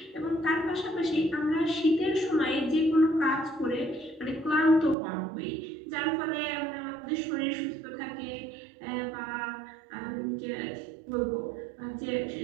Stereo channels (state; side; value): drops out; left; at 5.0 s